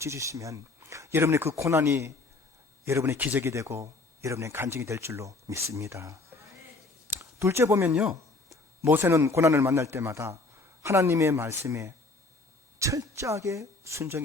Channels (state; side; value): quieter; right; 3.4 dB